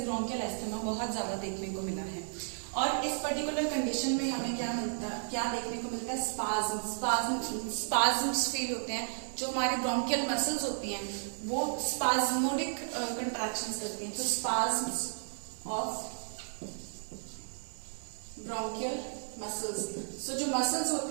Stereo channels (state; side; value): silent; left; digital silence